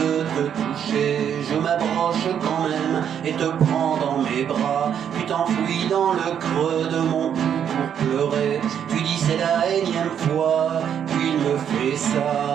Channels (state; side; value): quieter; left; 8.7 dB